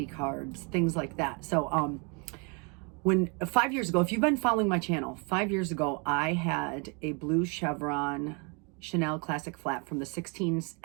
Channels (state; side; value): quieter; left; 33.9 dB